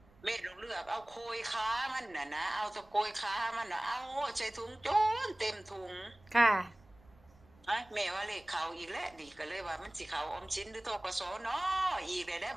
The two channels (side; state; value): right; noise; rumble, 27 dB below the sound